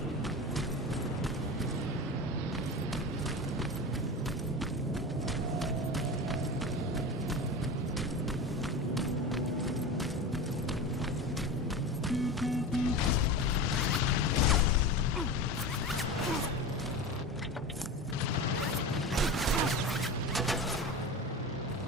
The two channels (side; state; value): both; normal; correlation 0.27